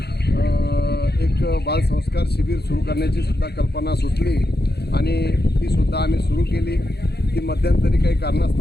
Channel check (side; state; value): right; late; 0.48 ms